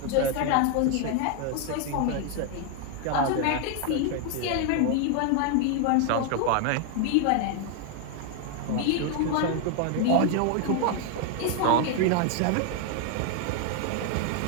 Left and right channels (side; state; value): both; different; correlation 0.00